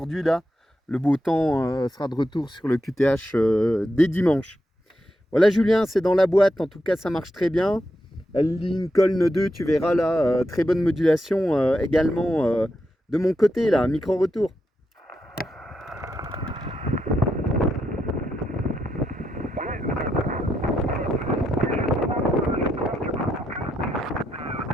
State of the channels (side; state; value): both; normal; correlation 0.83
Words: là, le beau temps sera de retour sur le QTH dès dimanche. Voilà Julien, c'est dans la boîte, en tout cas ça marche très bien. Lincoln 2, tu verras là, très bonne modulation également de mon côté là, micro-retour.